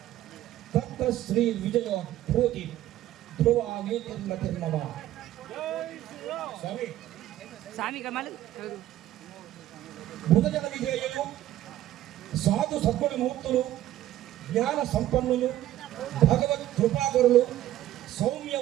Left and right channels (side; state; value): left; quieter; 13.7 dB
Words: తత్ర శ్రీ విజయో భూతి ధ్రువా నీతిర్మతిర్మమ. స్వామి స్వామి కమల్ భుజగ విజయులు, సాధు సద్గుణమూర్తులు, జ్ఞాన సంపన్నులు, భగవత్ కృపాకరులు,